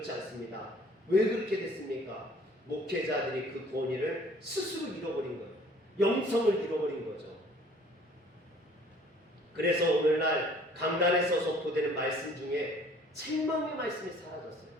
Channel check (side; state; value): both; normal; correlation 0.55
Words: 않습니다. 왜 그렇게 됐습니까? 목회자들이 그 권위를 스스로 잃어버린 거예요. 영성을 잃어버린 거죠. 그래서 오늘날 강단에서 선포되는 말씀 중에 책망의 말씀이 사라졌어요.